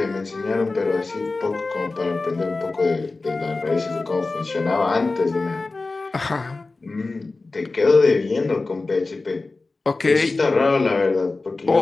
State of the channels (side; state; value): right; quieter; 3.5 dB